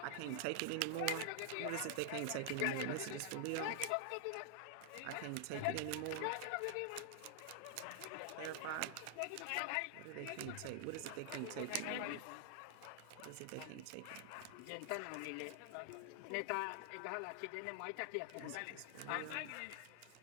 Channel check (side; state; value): both; different; correlation 0.00